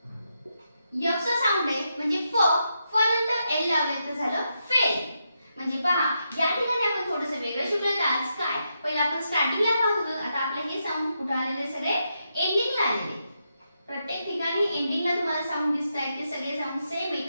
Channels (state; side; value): inverted; both; correlation -0.83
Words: आपण स्टार्टिंगला पाहत होतो, आता आपले हे साऊंड कुठे आलेले सगळे एंडिंगला आलेले. प्रत्येक ठिकाणी एंडिंगला तुम्हाला साऊंड दिसतायत, ते सगळे साऊंड सेम आहेत.